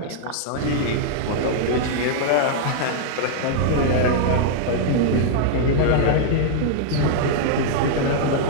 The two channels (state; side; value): different; both; correlation -0.01